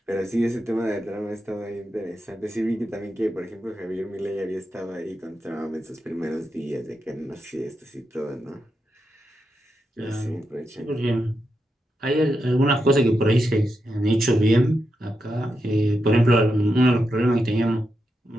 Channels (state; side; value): normal; both; correlation 0.86